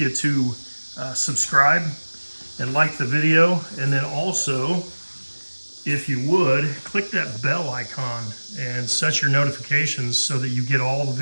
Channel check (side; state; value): both; inverted; correlation -1.00